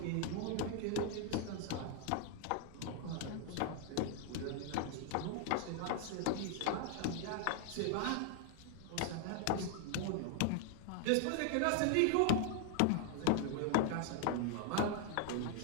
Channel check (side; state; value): both; different; correlation 0.00